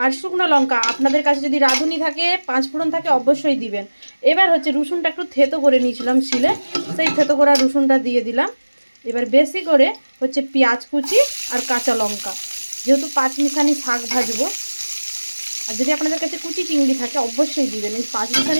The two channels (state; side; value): inverted; both; correlation -1.00